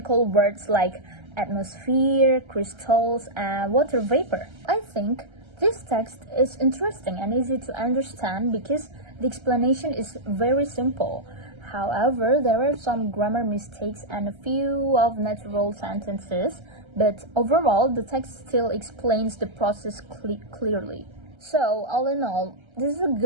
words like atmosphere, crystals, and water vapor. I think this text is interesting and easy to understand because the explanation is very simple. However, there are some grammar mistakes and a few of natural sentences, but overall, the text still explains the process clearly. So, all in all, this is a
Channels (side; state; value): left; late; 1.3 ms